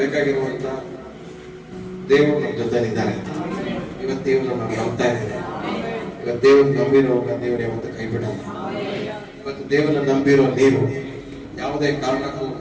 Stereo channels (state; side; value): identical; both; correlation 1.00